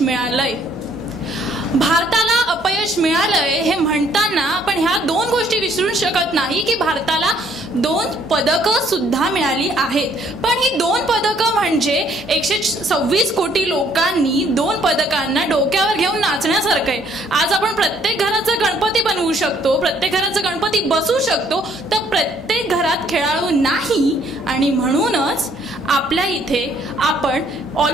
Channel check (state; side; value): normal; both; correlation 0.64